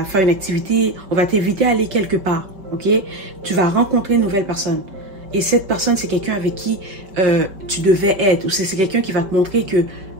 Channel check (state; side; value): late; left; 5.2 ms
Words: faire une activité. On va t'inviter à aller quelque part. Ok? Tu vas rencontrer une nouvelle personne. Et cette personne, c'est quelqu'un avec qui tu devais être. Ou c'est quelqu'un qui va te montrer